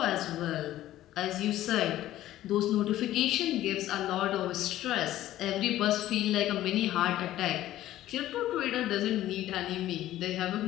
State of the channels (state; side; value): quieter; right; 14.0 dB